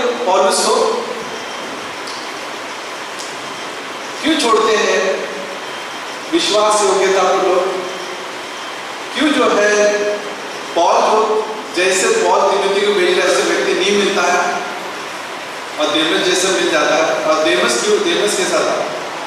पौलुस को? क्यों छोड़ते हैं विश्वास योग्यता को लोग? क्यों जो है पौल को, जैसे पौल तिमोथी को भेज रहा है, ऐसे व्यक्ति नहीं मिलता है और देमस जैसे मिल जाता है। और देमस क्यों? देमस के साथ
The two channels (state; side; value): identical; both; correlation 1.00